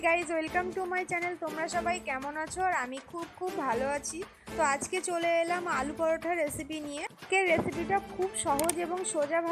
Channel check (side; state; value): both; identical; correlation 1.00